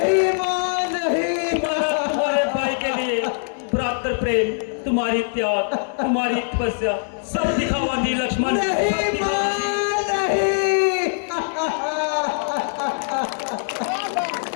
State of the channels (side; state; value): right; silent; digital silence